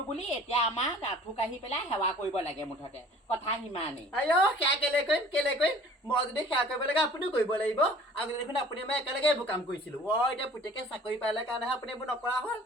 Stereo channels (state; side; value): normal; both; correlation 0.49